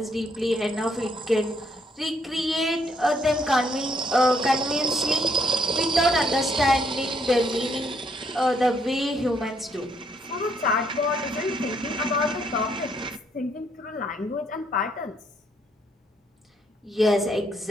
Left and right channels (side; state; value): both; normal; correlation 0.71